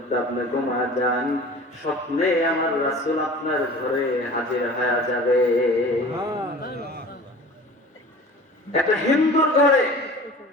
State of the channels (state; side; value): normal; both; correlation 0.41